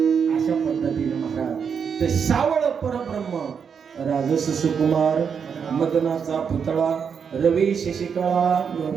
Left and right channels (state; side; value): quieter; left; 6.7 dB